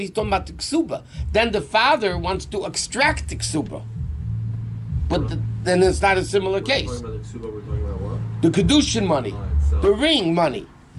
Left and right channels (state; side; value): identical; both; correlation 1.00